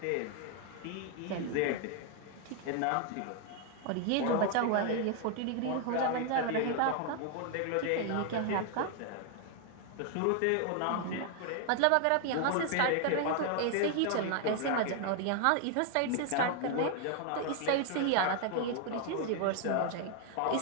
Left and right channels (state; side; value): different; both; correlation 0.00